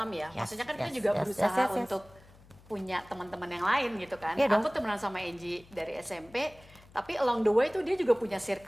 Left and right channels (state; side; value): noise; left; hum, 24 dB below the sound